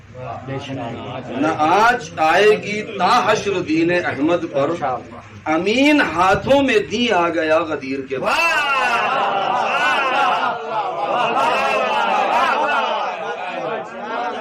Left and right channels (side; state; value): both; identical; correlation 1.00